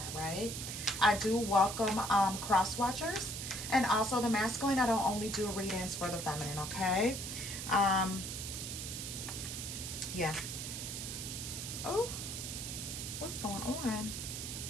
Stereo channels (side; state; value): right; noise; hiss, 6 dB below the sound